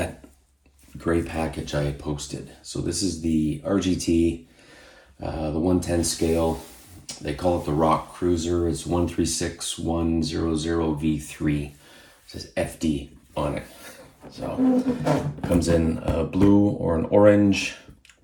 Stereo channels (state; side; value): identical; both; correlation 1.00